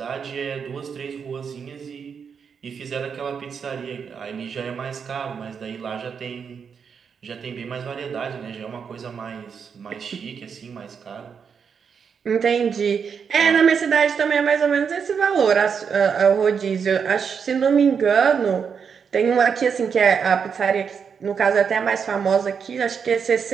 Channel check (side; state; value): left; quieter; 6.6 dB